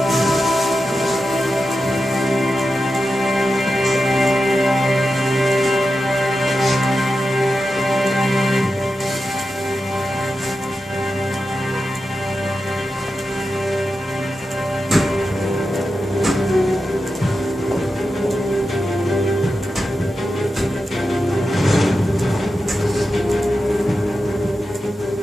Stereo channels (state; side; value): normal; both; correlation 0.90